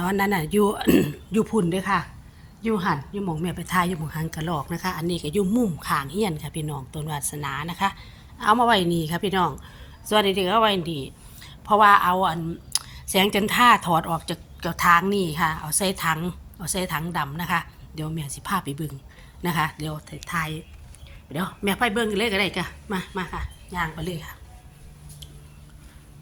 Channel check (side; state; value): both; identical; correlation 1.00